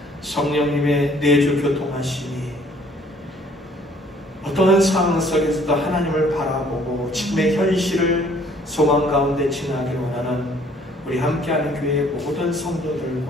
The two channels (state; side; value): normal; both; correlation 0.59